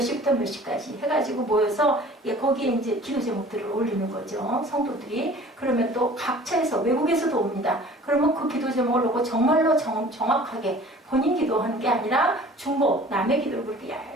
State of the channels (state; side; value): normal; both; correlation 0.47